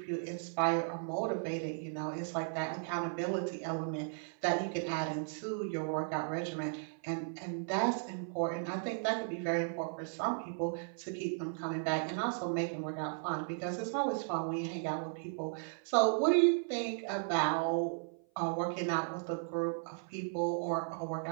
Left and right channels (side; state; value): left; silent; 54 dB below the other